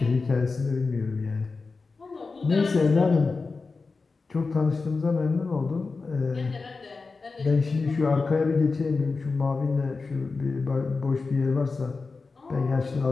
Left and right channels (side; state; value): right; quieter; 4.2 dB